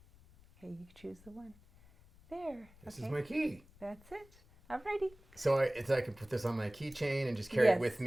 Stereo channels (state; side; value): noise; left; rumble, 25 dB below the sound